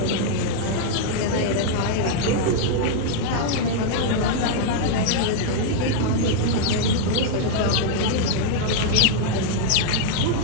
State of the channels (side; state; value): both; different; correlation -0.01